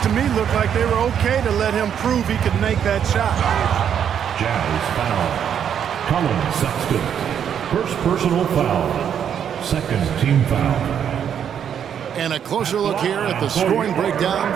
me looked like they were okay to let him prove he could make that shot. Jazz foul. Colin Sexton. First personal foul. Second team foul. And a closer look here at the scoring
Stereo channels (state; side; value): quieter; left; 8.6 dB